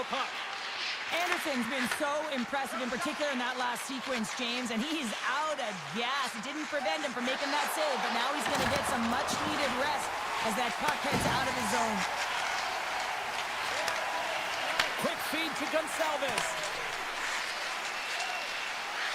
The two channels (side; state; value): both; identical; correlation 1.00